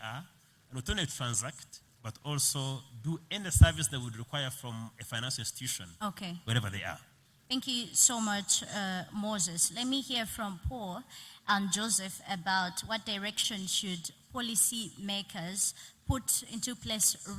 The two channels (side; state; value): both; identical; correlation 1.00